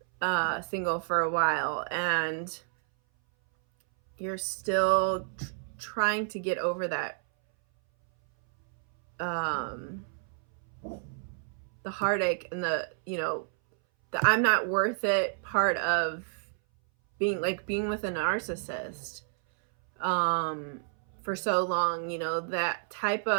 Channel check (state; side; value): silent; left; 58 dB below the other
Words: single for a while and you're still trying to get over that the heartache and the I'm not worth it part of being with a narcissist for so long. That type